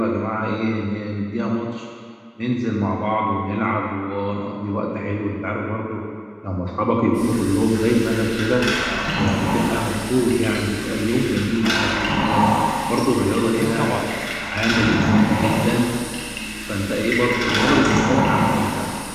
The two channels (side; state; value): both; identical; correlation 1.00